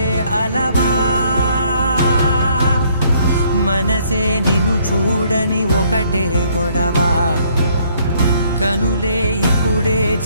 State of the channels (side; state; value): both; inverted; correlation -0.65